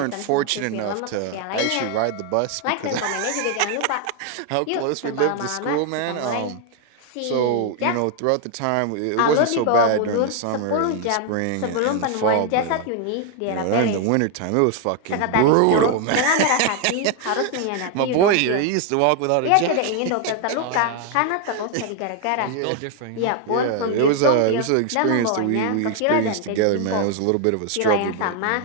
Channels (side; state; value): both; different; correlation 0.00